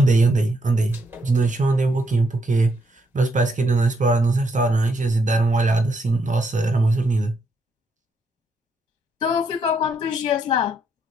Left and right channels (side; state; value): both; normal; correlation 0.76